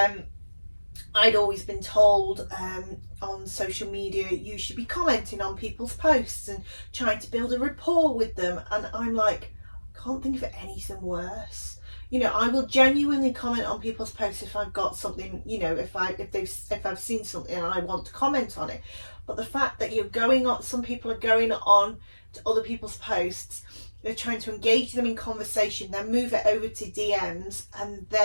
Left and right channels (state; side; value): inverted; both; correlation -1.00